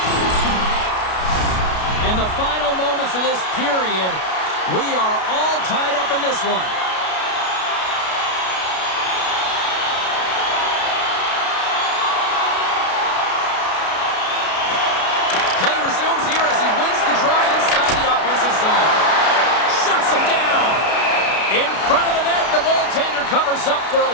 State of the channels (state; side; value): late; right; 32 ms